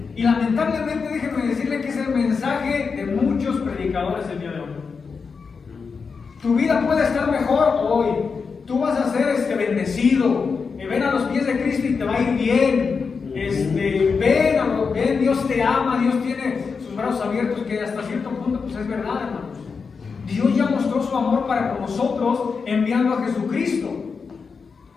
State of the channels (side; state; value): right; quieter; 5.3 dB